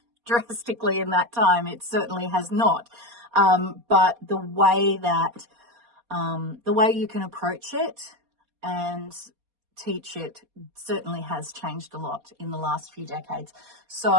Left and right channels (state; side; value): late; left; 4.2 ms